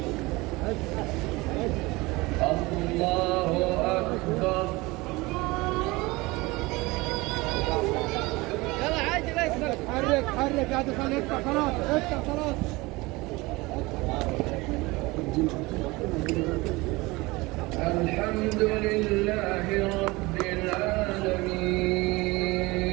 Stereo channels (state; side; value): quieter; left; 22.5 dB